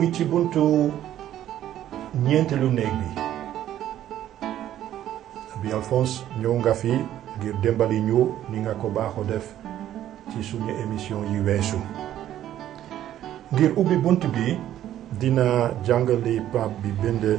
ci buntu ñeenteelu néeg bi. Abi Alphonse ñëw nga fi ngir dimbali ñu ni nga ko baaxoo def ci suñu émission yi weesu. ngir ubbi bunt bi dina jàngali Pape bi bind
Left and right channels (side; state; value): left; quieter; 12.0 dB